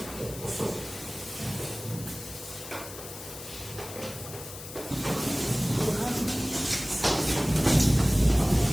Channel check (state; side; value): noise; left; hiss, 12 dB below the sound